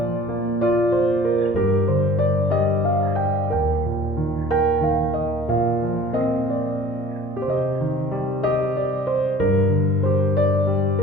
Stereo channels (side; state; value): both; normal; correlation 0.48